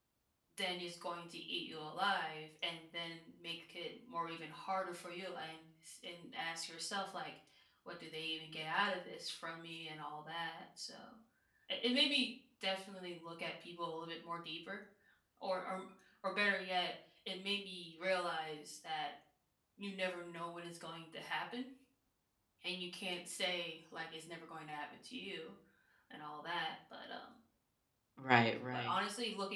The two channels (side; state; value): both; identical; correlation 1.00